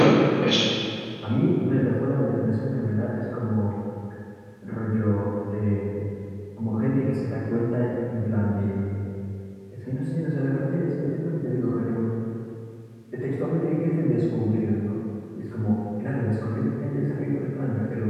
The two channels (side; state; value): both; identical; correlation 1.00